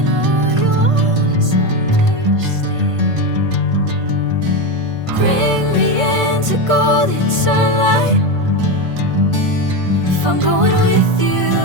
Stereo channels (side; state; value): left; late; 1.5 ms